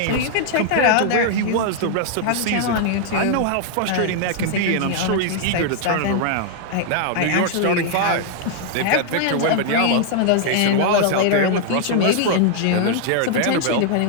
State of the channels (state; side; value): different; both; correlation 0.00